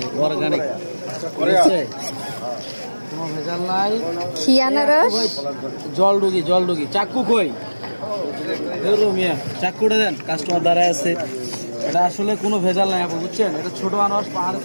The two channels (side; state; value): both; inverted; correlation -1.00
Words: অর্গানিক, কোনো ভেজাল নাই। কি আনারস? জলডুগি, জলডুগি। চাক্কু কই? মিয়া চাক্কুটা দেন, কাস্টমার দাঁড়ায় আছে। এটা আসলে কোনো ভেজাল নাই আপু, বুঝছেন? এটা ছোট আনারস, পাহাড়ে